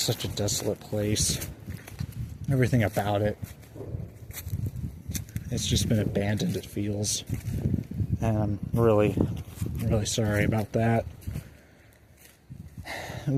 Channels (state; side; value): identical; both; correlation 1.00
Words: such a desolate place. Everything about it. It's just been abandoned, it feels. And I'm really, really sorry about that.